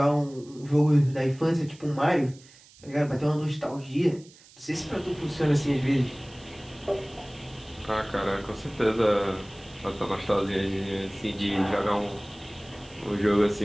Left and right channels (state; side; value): noise; right; hiss, 24 dB below the sound